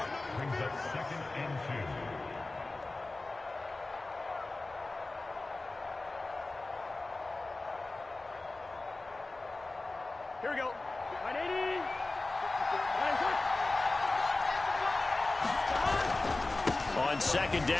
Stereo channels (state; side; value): quieter; right; 3.1 dB